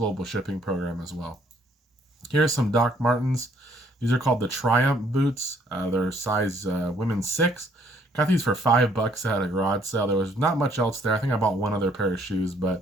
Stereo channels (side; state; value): both; normal; correlation 0.65